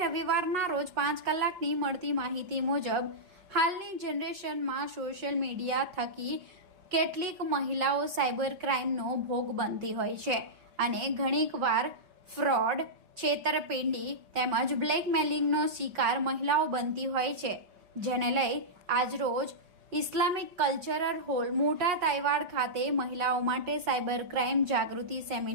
રવિવારના રોજ 5 કલાકની મળતી માહિતી મુજબ હાલની જનરેશનમાં સોશિયલ મીડિયા થકી કેટલીક મહિલાઓ સાયબર ક્રાઇમનો ભોગ બનતી હોય છે અને ઘણીકવાર ફ્રોડ, છેતરપિંડી તેમજ બ્લેકમેલિંગનો શિકાર મહિલાઓ બનતી હોય છે, જેને લઈ આજરોજ ઇસ્લામિક કલ્ચરલ હોલ મોટા તાઇવાડ ખાતે મહિલાઓ માટે સાયબર ક્રાઇમ જાગૃતિ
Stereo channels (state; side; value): late; left; 5.4 ms